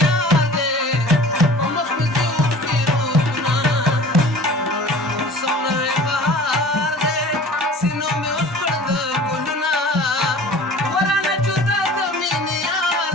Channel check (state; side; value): normal; both; correlation 0.44